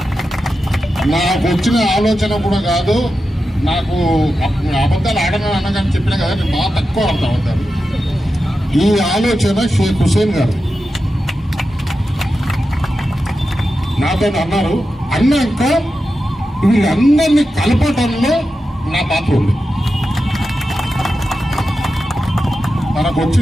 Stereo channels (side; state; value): both; normal; correlation 0.91